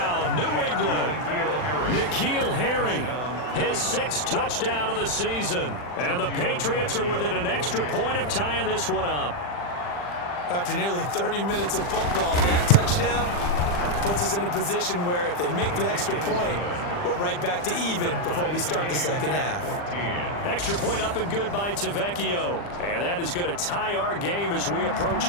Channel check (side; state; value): right; late; 40 ms